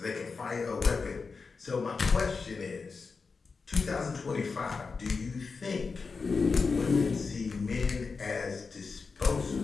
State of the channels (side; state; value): right; quieter; 4.7 dB